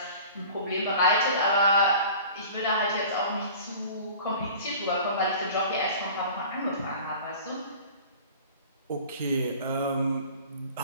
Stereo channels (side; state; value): both; inverted; correlation -0.43